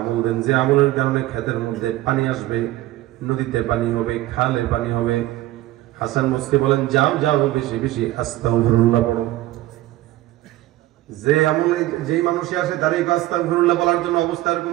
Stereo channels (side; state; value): left; quieter; 16.3 dB